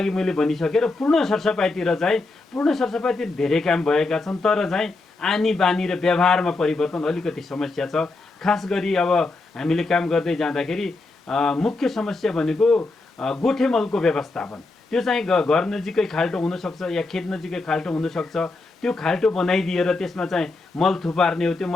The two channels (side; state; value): right; quieter; 3.4 dB